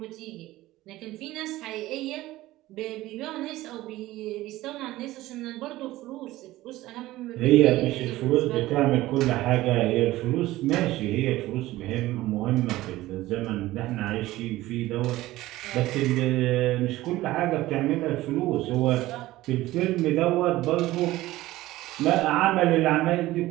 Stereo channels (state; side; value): quieter; left; 16.9 dB